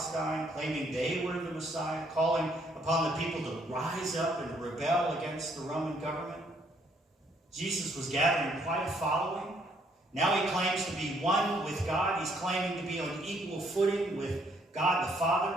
claiming they were the Messiah, calling upon the people to rise up and rebel against the Roman government. Jesus was gathering quite a following. Now he claims to be one with God. He's claiming to be on equal footing with God the Father.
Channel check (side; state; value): both; normal; correlation 0.68